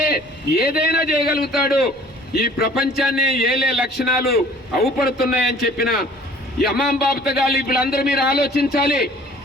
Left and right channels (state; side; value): normal; both; correlation 0.52